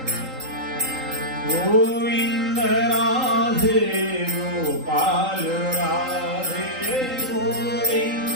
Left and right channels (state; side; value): late; left; 3.8 ms